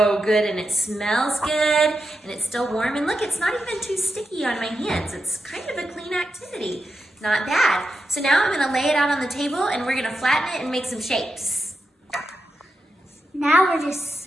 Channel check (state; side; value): normal; both; correlation 0.88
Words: good and it smells good and it's still warm. And look, it's not even too sticky on my hands. It's kind of a clean activity. Not bad. So now I'm gonna lay it out on the table and we're gonna flatten it and make some shapes. Now we're just